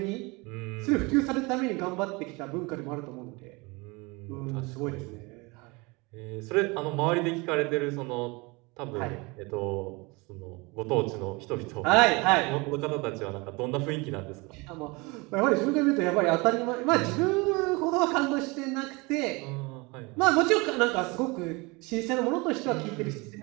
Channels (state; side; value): quieter; left; 26.1 dB